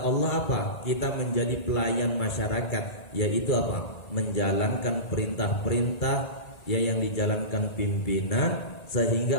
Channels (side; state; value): right; late; 2.3 ms